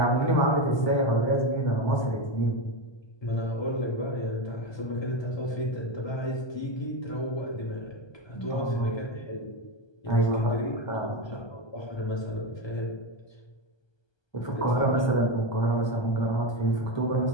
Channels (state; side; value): late; right; 1.2 ms